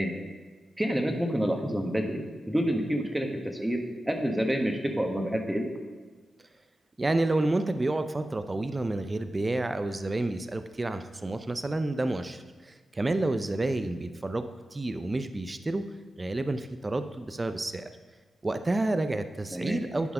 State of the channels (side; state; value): both; normal; correlation 0.94